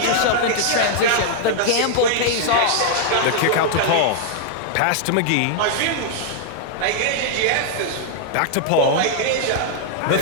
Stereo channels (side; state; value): both; different; correlation -0.01